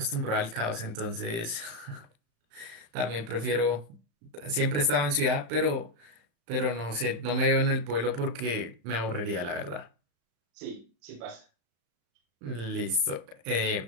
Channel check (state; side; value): late; left; 35 ms